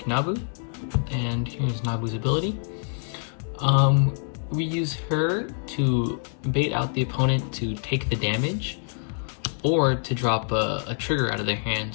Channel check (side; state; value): right; silent; 61 dB below the other